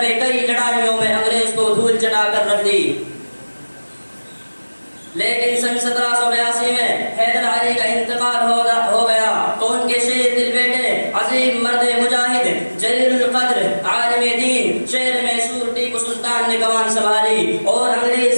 میں کئی لڑائیوں میں انگریز کو دھول چٹا کر رکھ دی۔ لیکن سن 1782 میں حیدر علی کا انتقال ہو گیا تو ان کے شیر دل بیٹے عظیم مرد مجاہد جلیل القدر عالم دین شیر میسور ٹیپو سلطان نے کمان سنبھالی اور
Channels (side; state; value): both; inverted; correlation -1.00